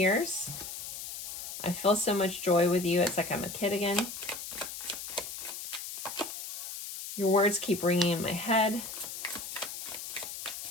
I feel so much joy with you. It's like I'm a kid again. Your words keep ringing in my head.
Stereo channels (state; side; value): noise; left; hiss, 8 dB below the sound